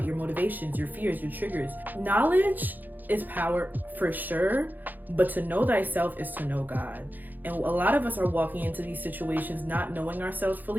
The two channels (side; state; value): left; late; 0.086 ms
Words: your motivations, your fears, your triggers. Knowledge is power for sure, but to know thyself is to know God. And a lot of us are walking into these situations not knowing ourselves